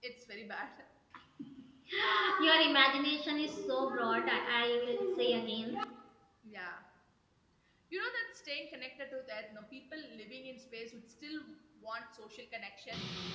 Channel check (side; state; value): both; identical; correlation 1.00